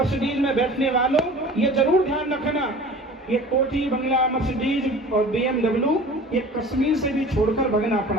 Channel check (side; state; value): both; normal; correlation 0.42